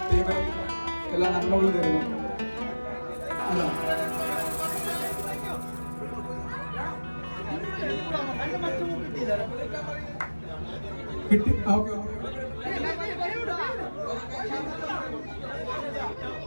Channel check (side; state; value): both; inverted; correlation -1.00